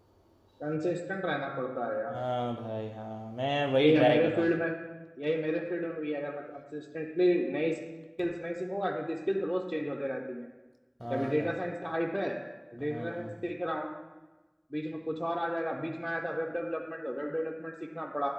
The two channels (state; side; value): identical; both; correlation 1.00